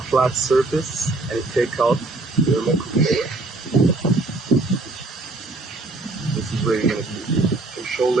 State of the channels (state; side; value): quieter; left; 3.2 dB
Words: flat surface and you take out the remote controller. This is where you're going to be